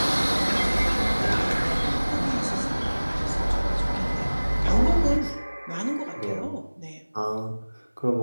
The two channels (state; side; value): inverted; both; correlation -1.00